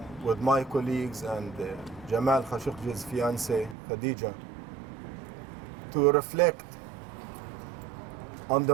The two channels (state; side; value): drops out; left; at 3.8 s